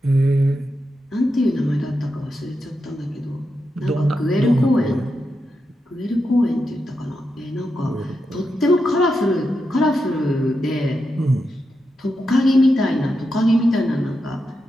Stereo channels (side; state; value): both; normal; correlation 0.87